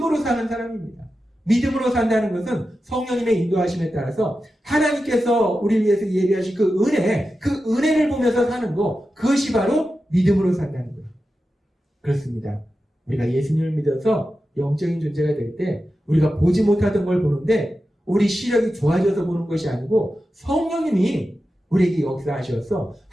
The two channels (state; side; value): normal; both; correlation 0.91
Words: 사는 사람입니다. 믿음으로 산다는 것은 성령님의 인도하심에 따라서 하나님께서 우리를 위해서 예비하신 그 은혜를 보면서 사는 거, 그것이 바로 믿음으로 산다는 거예요. 그렇습니다. 우리가 예수님을 믿어서 영적인 존재가 될 때 우리가 보지 못하던 걸 보는데 우리 시력이 좋아져서 보는 것이 아니고 성령님이 우리에게 역사하셔서